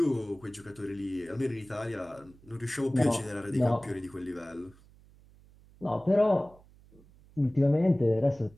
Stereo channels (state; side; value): noise; right; hum, 26 dB below the sound